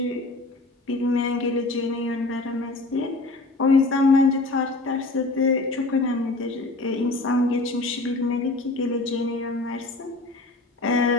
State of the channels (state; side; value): quieter; right; 3.1 dB